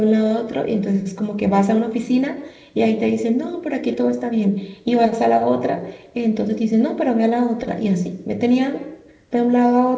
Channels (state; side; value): identical; both; correlation 1.00